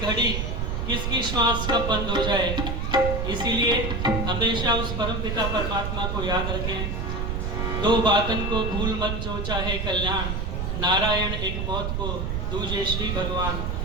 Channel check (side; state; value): right; noise; rumble, 1 dB below the sound